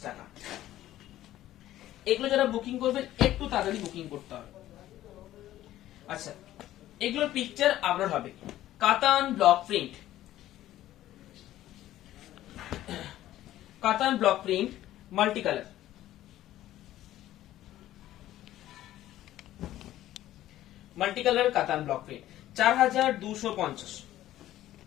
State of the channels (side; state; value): right; quieter; 13.9 dB